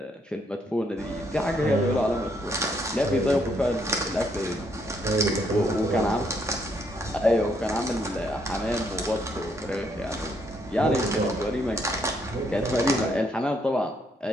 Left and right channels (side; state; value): both; normal; correlation 0.73